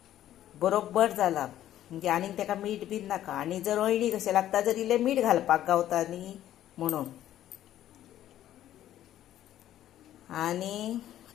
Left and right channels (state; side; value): quieter; right; 12.4 dB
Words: बरोबर जाला, म्हणजे आनीक तेका मीठ बीन नाका। आनी जर अळणी कशें लागता जर इल्लें मीठ घालपाक गावता न्ही म्हणून। आनी